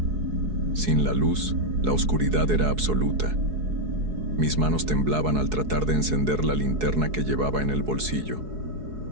Sin la luz, la oscuridad era absoluta. Mis manos temblaban al tratar de encender la linterna que llevaba en el bolsillo.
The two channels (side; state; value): left; late; 4.7 ms